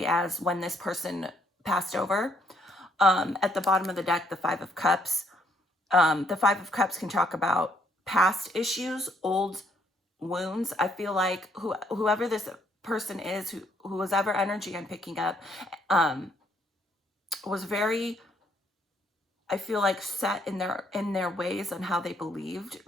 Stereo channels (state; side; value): normal; both; correlation 0.69